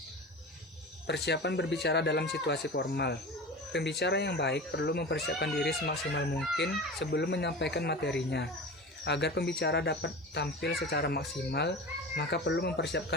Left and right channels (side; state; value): both; normal; correlation 0.32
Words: Persiapan berbicara dalam situasi formal. Pembicara yang baik perlu mempersiapkan diri semaksimal mungkin sebelum menyampaikan materinya. Agar pembicara dapat tampil secara maksimal, maka perlu